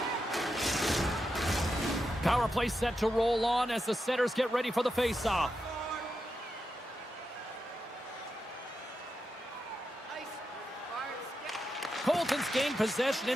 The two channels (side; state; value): both; normal; correlation 0.87